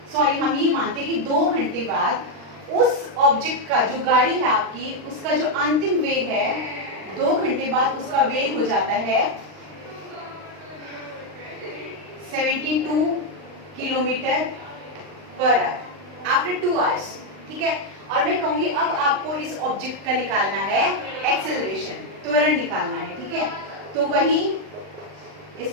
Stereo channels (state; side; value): late; left; 39 ms